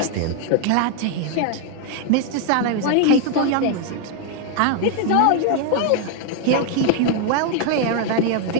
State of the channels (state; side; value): different; both; correlation 0.00